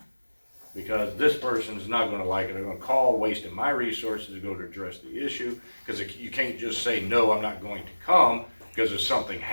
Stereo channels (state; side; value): inverted; both; correlation -1.00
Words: Because this person's not going to like it. They're going to call, wasting my resources to go to address the issue. Because you can't just say, no, I'm not going to come, because if something